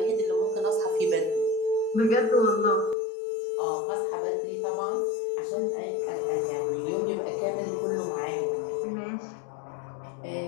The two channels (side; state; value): right; drops out; at 3.0 s